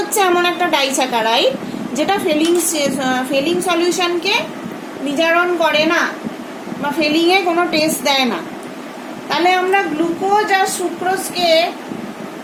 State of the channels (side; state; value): both; identical; correlation 1.00